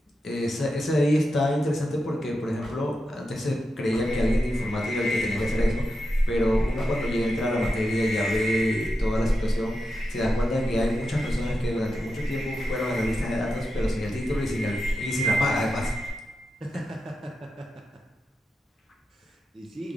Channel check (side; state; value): both; normal; correlation 0.89